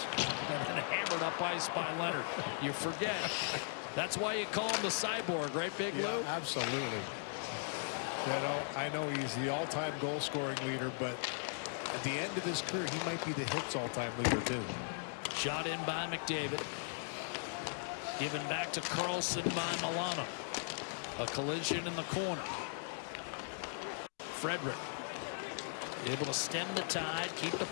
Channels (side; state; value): right; silent; digital silence